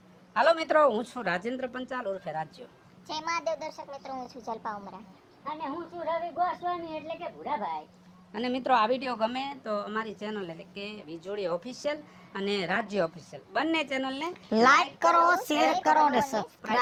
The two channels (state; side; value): identical; both; correlation 1.00